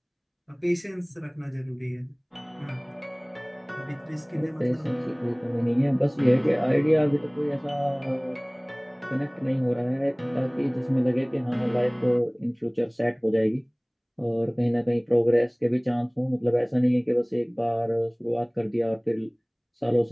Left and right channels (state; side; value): identical; both; correlation 1.00